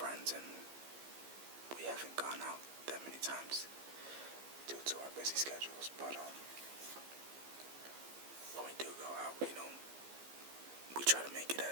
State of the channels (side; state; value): left; late; 15 ms